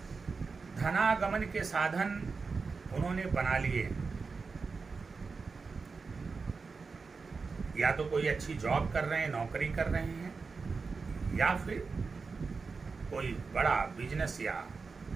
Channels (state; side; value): quieter; left; 4.6 dB